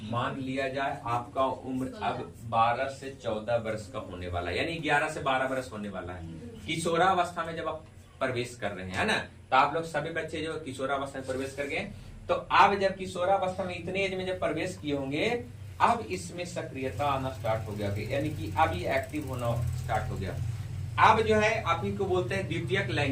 मान लिया जाए आपका उम्र अब 12 से 14 वर्ष का होने वाला है, यानी 11 से 12 वर्ष होने वाला है। किशोरावस्था में जब आप प्रवेश कर रहे हैं, है ना, तो आप लोग सभी बच्चे जो किशोरावस्था में प्रवेश कर गए, तो अब जब किशोरावस्था में इतने एज में जब प्रवेश किए होंगे, अब इसमें सक्रियता आना स्टार्ट हो गया, यानी कि अब ये एक्टिव होना स्टार्ट हो गया। अब जो है आप ही को बोलते हैं द्वितीयक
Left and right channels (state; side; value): identical; both; correlation 1.00